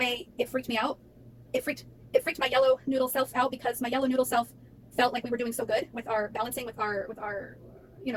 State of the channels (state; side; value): identical; both; correlation 1.00